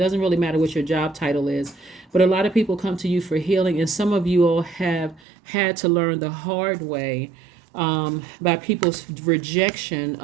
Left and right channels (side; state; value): left; drops out; at 5.2 s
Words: doesn't really matter what your job title is, but a lot of people come to you for healing, and some of you all have had to learn the hard way by people's rejection